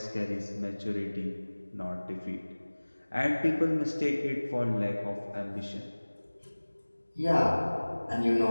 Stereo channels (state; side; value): inverted; both; correlation -1.00